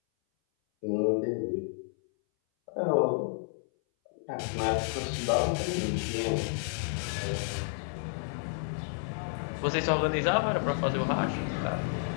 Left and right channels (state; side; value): silent; right; 57 dB below the other